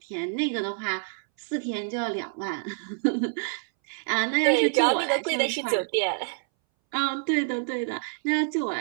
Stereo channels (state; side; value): silent; left; 60 dB below the other